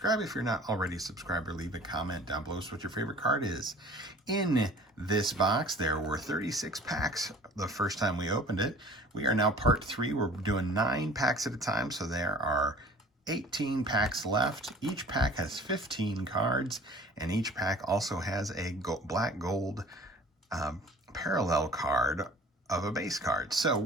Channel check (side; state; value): both; normal; correlation 0.47